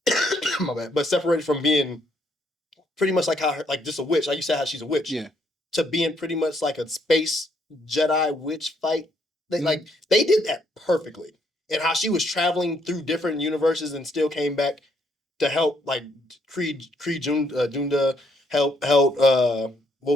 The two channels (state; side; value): normal; both; correlation 0.72